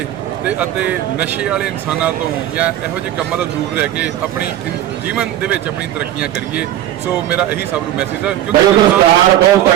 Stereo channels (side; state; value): left; quieter; 12.7 dB